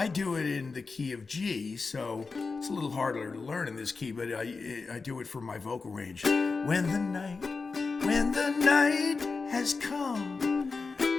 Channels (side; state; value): right; quieter; 4.4 dB